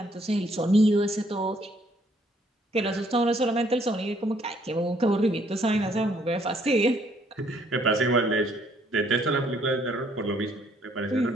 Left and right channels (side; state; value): both; normal; correlation 0.66